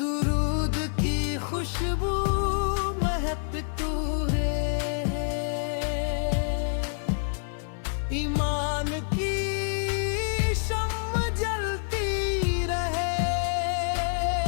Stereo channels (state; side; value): silent; right; 56 dB below the other